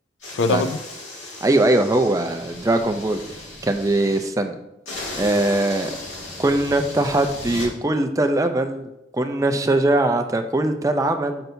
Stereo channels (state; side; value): normal; both; correlation 0.67